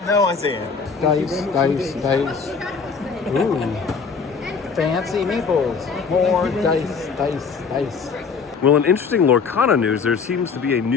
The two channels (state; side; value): quieter; right; 5.4 dB